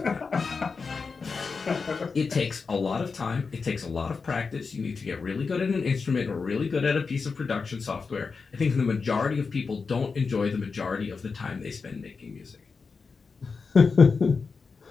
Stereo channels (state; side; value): quieter; right; 4.9 dB